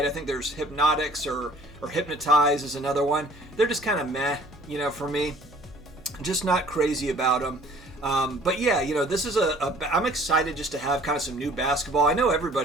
I think there's Hypnotics or Hypnotize is another one. They're just kind of meh, for me. Just not crazy about them. But yeah, this is I'm excited just to have kind of some new basketball. I know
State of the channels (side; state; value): right; noise; hum, 24 dB below the sound